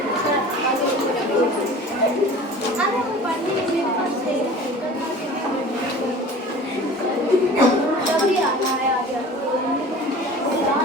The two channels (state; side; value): normal; both; correlation 0.42